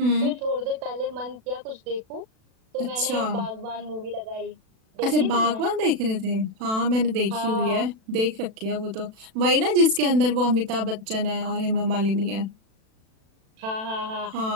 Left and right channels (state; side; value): late; left; 36 ms